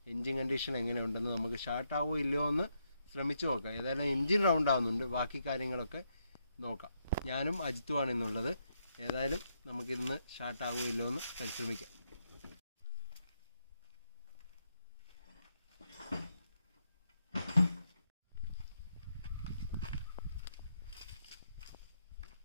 എൻജിൻ കണ്ടീഷൻ എങ്ങനെയുണ്ടെന്ന്. നമുക്ക് സ്റ്റാർട്ടാവോ ഇല്ലയോ എന്ന് ശ്രമിച്ചു നോക്കാം. ഏതായാലും എൻജിൻ റൗണ്ട് ആവുന്നുണ്ട്, ബാക്കി കാര്യങ്ങളൊക്കെ നോക്കാം. ഞാനും അജിത്തുമാണ് ഇന്നുള്ളത്. ഏതായാലും നമുക്കിന്ന് സ്റ്റാർട്ടാവോ ഇല്ലയോ എന്ന് പരിശ്രമിക്കാം.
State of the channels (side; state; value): both; inverted; correlation -0.79